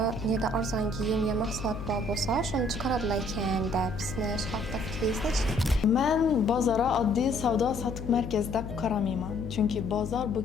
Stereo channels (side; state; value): left; noise; hum, 8 dB below the sound